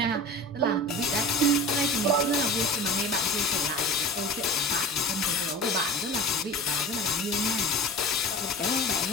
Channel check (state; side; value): normal; both; correlation 0.36